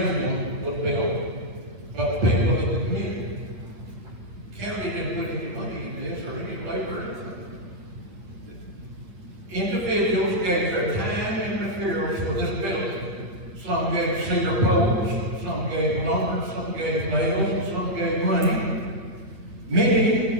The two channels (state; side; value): late; left; 11 ms